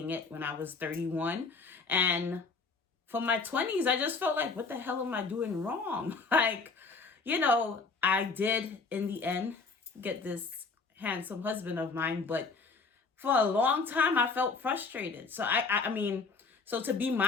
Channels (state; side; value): quieter; right; 4.4 dB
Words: it, when I was 31. And for my 20s, I just felt like, what the hell am I doing wrong? I did, in the end, get this handsome husband of mine, but for a long time, I felt frustrated. So, so to be